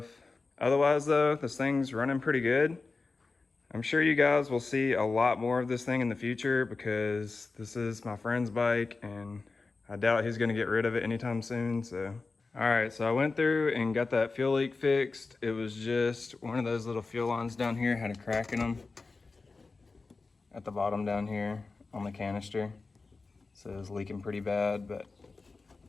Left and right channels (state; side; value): quieter; right; 3.9 dB